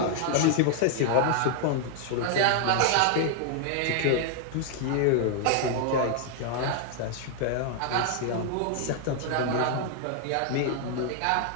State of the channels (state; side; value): different; both; correlation 0.00